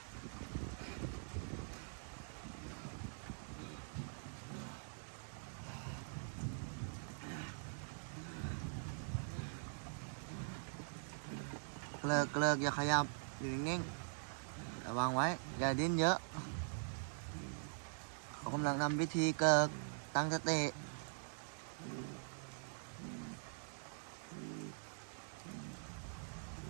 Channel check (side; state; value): left; silent; digital silence